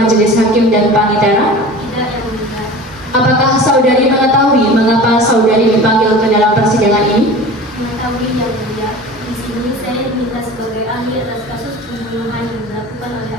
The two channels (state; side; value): normal; both; correlation 0.37